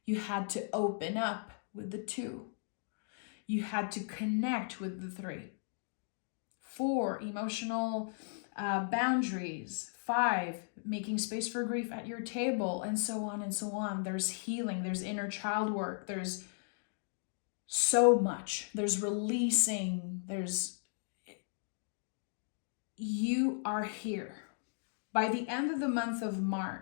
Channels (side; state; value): right; silent; digital silence